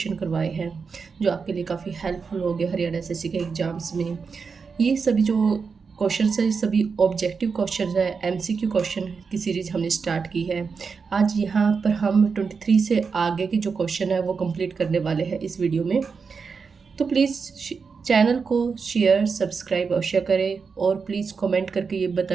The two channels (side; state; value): left; quieter; 5.3 dB